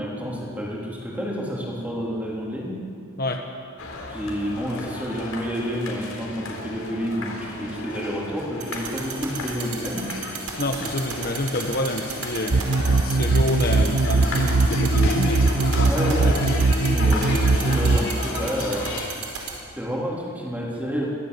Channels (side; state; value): both; normal; correlation 0.68